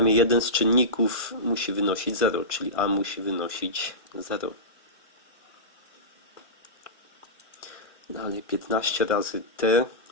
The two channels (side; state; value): right; late; 1.5 ms